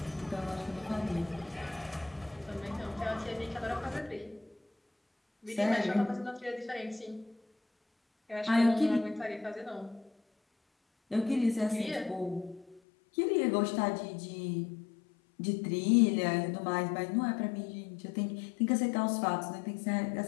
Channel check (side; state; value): right; drops out; at 12.8 s